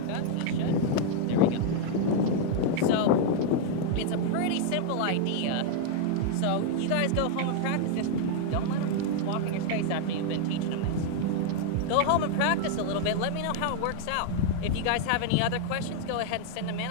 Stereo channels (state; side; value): different; both; correlation 0.00